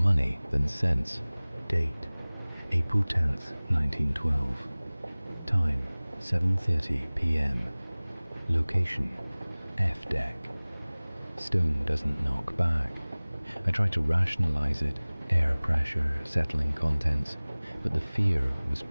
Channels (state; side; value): inverted; both; correlation -1.00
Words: than sense. Date, April 10th, 1912. Time, 7:30 p.m. Location, F deck. Stone doesn't knock back. I try to rationalize it, air pressure, settling contents, but the fear was